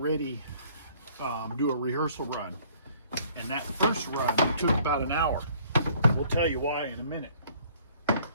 do a rehearsal run. And that first run took about an hour. We'll tell you why in a minute.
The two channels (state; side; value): inverted; both; correlation -0.58